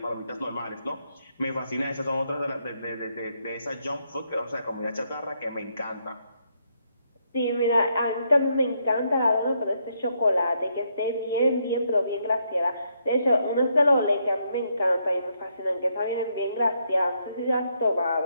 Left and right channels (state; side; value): inverted; both; correlation -0.76